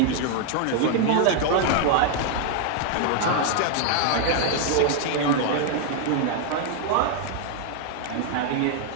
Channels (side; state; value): both; different; correlation 0.00